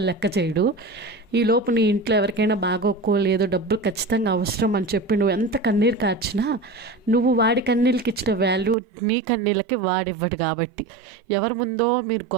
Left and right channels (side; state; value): left; drops out; at 8.8 s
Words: లెక్క చేయడు. ఈలోపు నీ ఇంట్లో ఎవరికైనా బాగోలేదో డబ్బులు ఖచ్చితంగా అవసరం అని చెప్పి నువ్వు ఎంత కన్నీరు కార్చినా నువ్వు వాడి కన్నీళ్ళకి ఇచ్చిన వాల్యూ నీ కన్నీళ్ళకి వాడివ్వడు. కాబట్టి ఎవరి ముందో మీరు